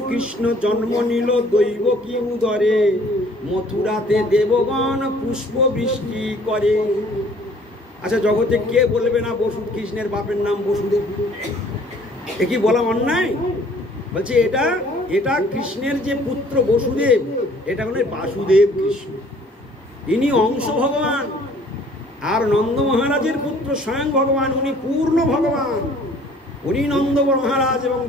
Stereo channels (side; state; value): both; normal; correlation 0.55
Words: কৃষ্ণ জন্ম নিল দৈব কি উদরে, মথুরাতে দেবগণ পুষ্প বৃষ্টি করে। আচ্ছা, জগতে কে বলবে না কৃষ্ণের বাপের নাম বসুদেব? এ কি বলা অন্যায়? বলছে এটা কৃষ্ণের যে পুত্র বসুদেব, এটা হলো বাসুদেব কৃষ্ণ, ইনি অংশ ভগবান। আর নন্দ মহারাজের পুত্র স্বয়ং ভগবান, উনি পূর্ণ ভগবান। উনি নন্দ মহারাজ এবং